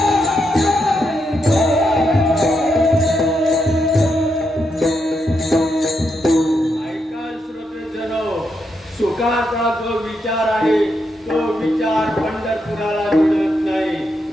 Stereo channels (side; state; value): both; normal; correlation 0.81